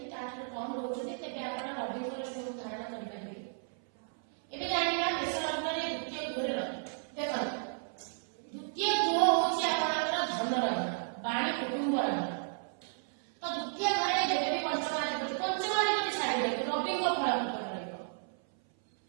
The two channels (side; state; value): left; silent; 56 dB below the other